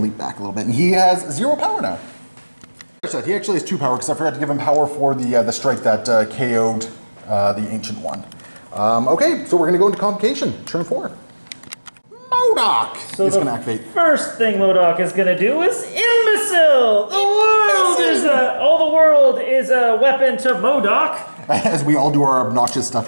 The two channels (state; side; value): inverted; both; correlation -1.00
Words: Leap back a little bit. And he has 0 power now. He actually has 2 power because I forgot to give him power for the strike that KO'd the Ancient One. Okay, so we're going to go into Convocation, turn 4. MODOK is going to activate. First thing MODOK is going to do is Imbecile! All the world is a weapon to MODOK. As we all do our obnoxious stuff